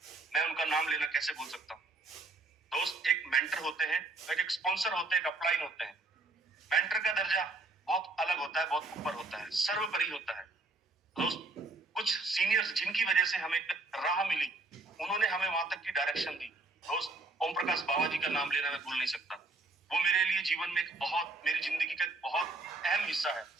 मैं उनका नाम लेना कैसे भूल सकता हूँ। दोस्त एक मेंटर होते हैं, एक स्पॉन्सर होते हैं, एक अपलाइन होते हैं। मेंटर का दर्जा बहुत अलग होता है, बहुत ऊपर होता है, सर्वोपरि होता है। दोस्त कुछ सीनियर्स जिनकी वजह से हमें राह मिली, उन्होंने हमें वहां तक की डायरेक्शन दी। दोस्त ओम प्रकाश बाबा जी का नाम लेना मैं भूल नहीं सकता, वो मेरे लिए जीवन में मेरी जिंदगी का एक बहुत अहम हिस्सा है।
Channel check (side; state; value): left; quieter; 3.2 dB